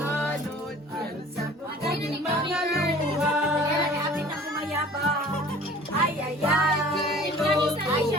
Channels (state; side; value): normal; both; correlation 0.47